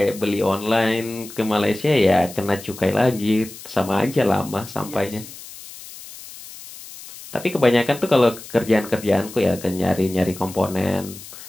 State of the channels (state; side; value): noise; left; hiss, 16 dB below the sound